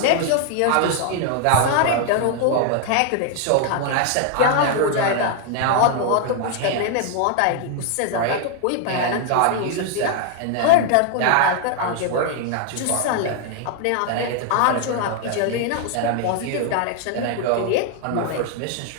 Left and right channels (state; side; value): different; both; correlation 0.00